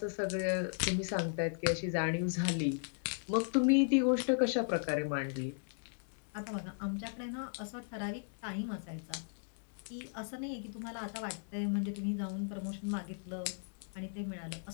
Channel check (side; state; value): right; silent; digital silence